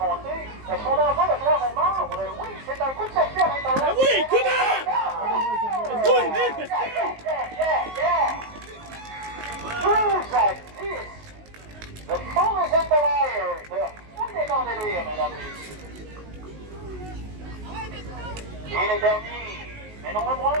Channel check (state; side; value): late; left; 19 ms